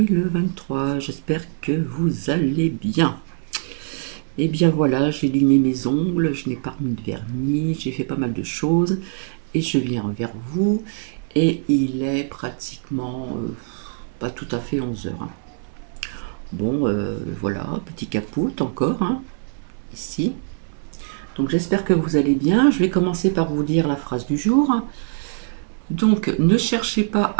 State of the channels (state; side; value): silent; left; 63 dB below the other